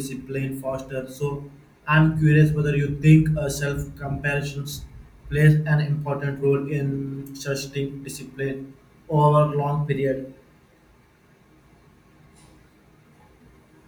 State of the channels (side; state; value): both; identical; correlation 1.00